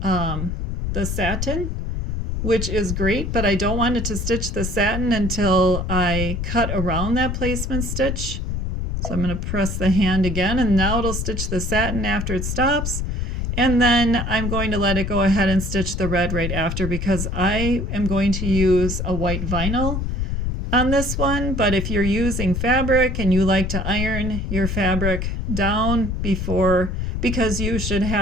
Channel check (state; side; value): noise; left; rumble, 2 dB below the sound